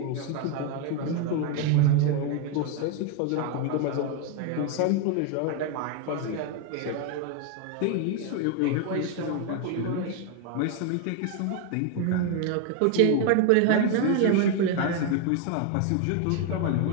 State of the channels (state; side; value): different; both; correlation 0.01